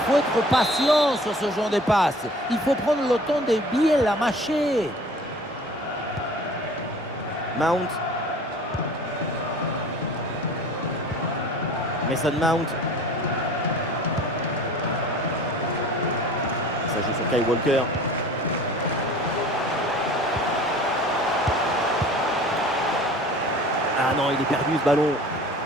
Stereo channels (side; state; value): both; normal; correlation 0.45